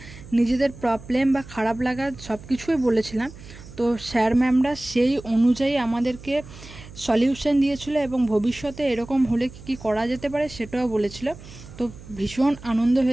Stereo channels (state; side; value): noise; right; hum, 17 dB below the sound